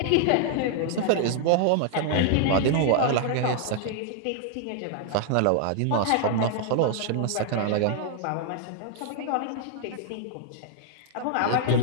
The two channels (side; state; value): both; different; correlation -0.01